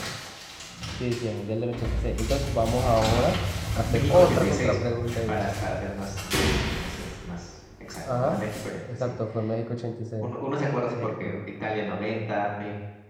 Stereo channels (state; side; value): identical; both; correlation 1.00